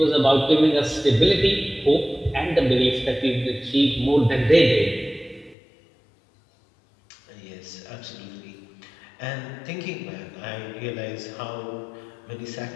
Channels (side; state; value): right; drops out; at 5.6 s